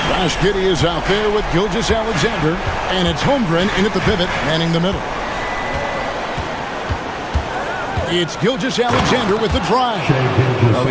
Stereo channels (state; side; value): identical; both; correlation 1.00